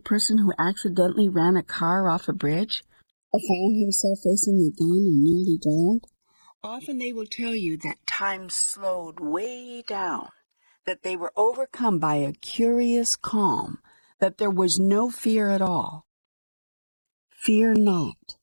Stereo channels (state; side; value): inverted; both; correlation -1.00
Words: who accidentally ran a car off a bridge or found himself facing a gun and nearly drowned? Often they will tell you that time slowed way down, that they were overcome by a curious calm, that there was no fear at all. Fear not,